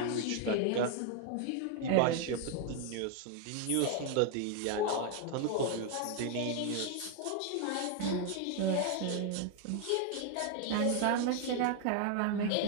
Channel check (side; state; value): both; different; correlation 0.00